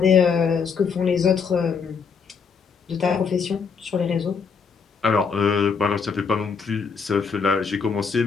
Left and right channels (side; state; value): right; quieter; 5.8 dB